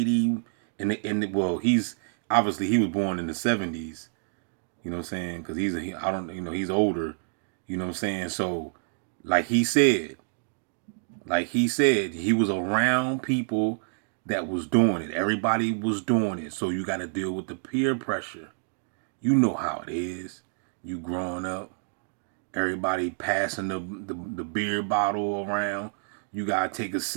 well, he's was born in the 70s. You know what I'm saying? Because he's older. You know what I'm saying? So, like he said, he was around people that was doing it. Everybody was doing it. So you got to deal with the peer pressure. You know how it is. You growing up, everybody passing the beer bottle around. You got to take a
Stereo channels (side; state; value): left; silent; digital silence